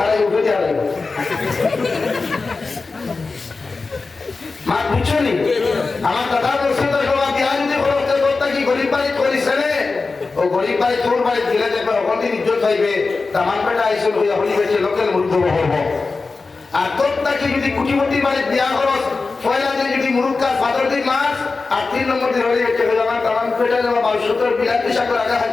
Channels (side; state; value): right; quieter; 4.0 dB